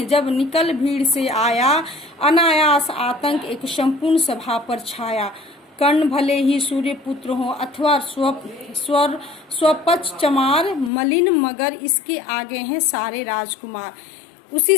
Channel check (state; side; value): drops out; right; at 10.9 s